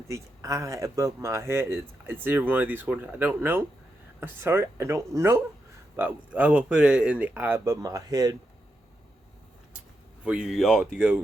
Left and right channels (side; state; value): both; normal; correlation 0.85